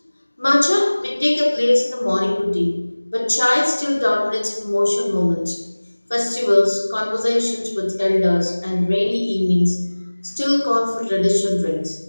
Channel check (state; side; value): inverted; both; correlation -1.00